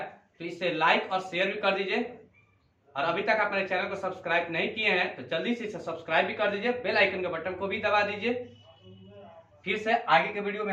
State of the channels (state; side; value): identical; both; correlation 1.00